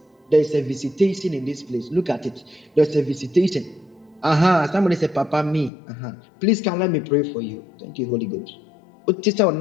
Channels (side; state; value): right; drops out; at 5.7 s